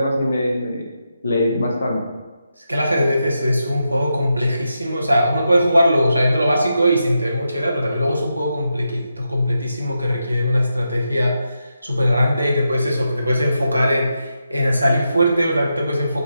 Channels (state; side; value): inverted; both; correlation -0.86